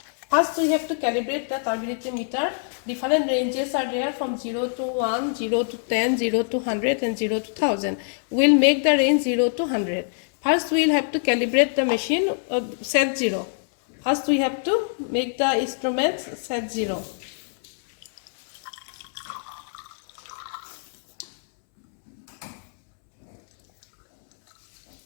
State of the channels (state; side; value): silent; right; 62 dB below the other